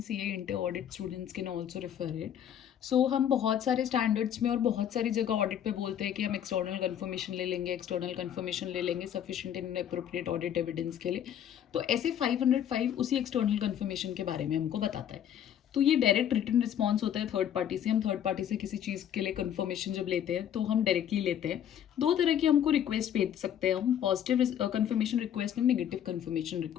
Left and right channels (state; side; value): quieter; right; 9.8 dB